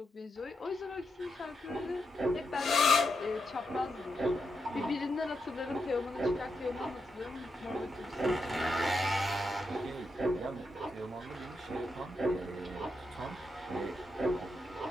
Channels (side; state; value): both; normal; correlation 0.83